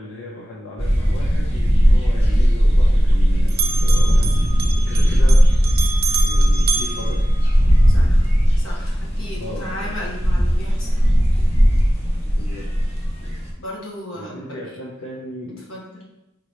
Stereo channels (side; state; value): both; normal; correlation 0.95